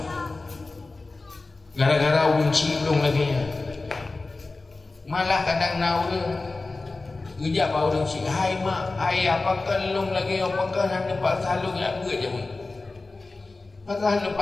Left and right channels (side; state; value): right; quieter; 3.5 dB